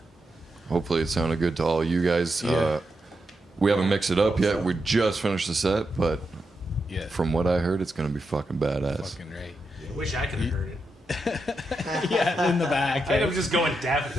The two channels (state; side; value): normal; both; correlation 0.85